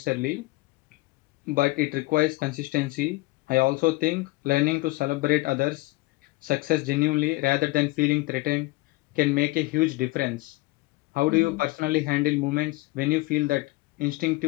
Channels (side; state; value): right; quieter; 21.4 dB